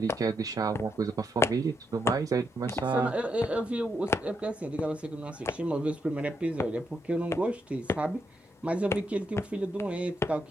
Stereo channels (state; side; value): normal; both; correlation 0.80